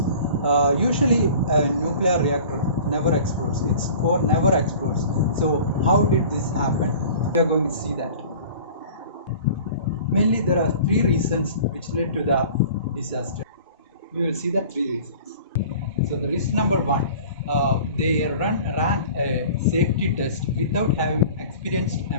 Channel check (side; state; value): both; inverted; correlation -0.43